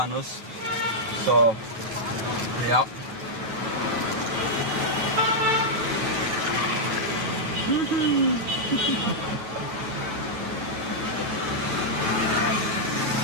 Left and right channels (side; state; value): left; late; 8.9 ms